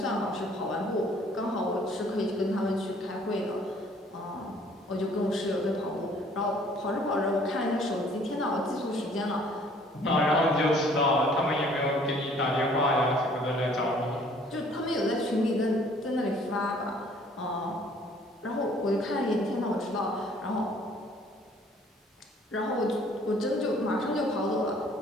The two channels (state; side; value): normal; both; correlation 0.57